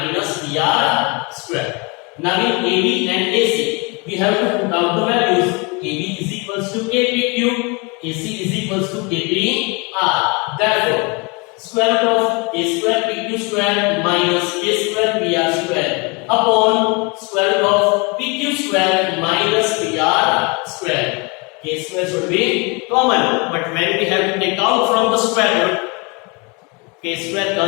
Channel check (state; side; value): quieter; right; 29.6 dB